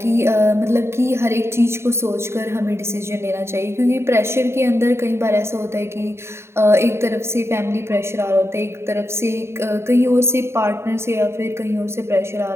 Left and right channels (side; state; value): left; late; 0.12 ms